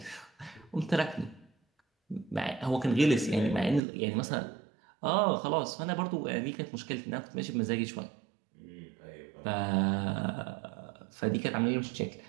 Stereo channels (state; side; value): drops out; left; at 3.8 s